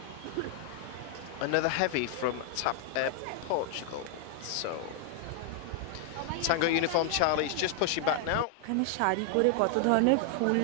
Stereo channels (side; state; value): both; different; correlation 0.00